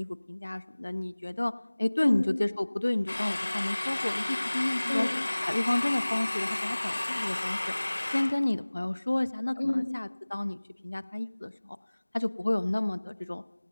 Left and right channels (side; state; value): both; inverted; correlation -1.00